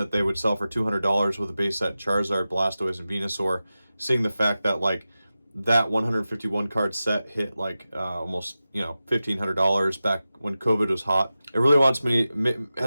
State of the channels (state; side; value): inverted; both; correlation -0.94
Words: they would sell for $200 with a base set Charizard, Blastoise, and Venusaur, seeing the fact that like that 151 card set hit like almost $1,500 back when COVID was hot. It really